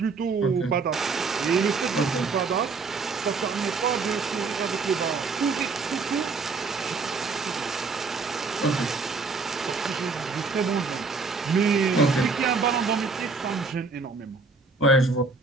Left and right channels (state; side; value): quieter; left; 4.4 dB